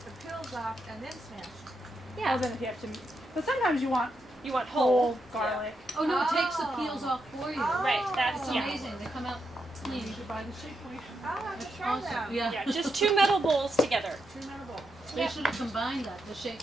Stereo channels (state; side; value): normal; both; correlation 0.83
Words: the peels off and then smash. yeah. Then if you have to, but sometimes you want You want whole whole. garlic. Oh no, it takes the peels off for you. Right, that's It's amazing. They come out clean. You should buy the shake weight. Oh, I have to try Awesome. that. Yeah. Yeah, just 2 metal bowls together. 2 metal bowls. They should have combined that, the